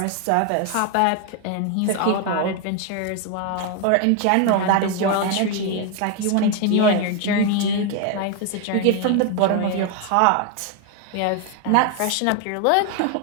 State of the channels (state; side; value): different; both; correlation 0.01